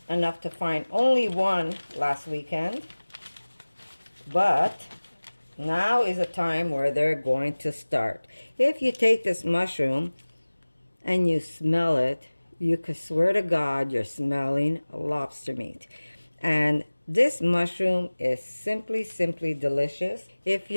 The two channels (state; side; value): inverted; both; correlation -1.00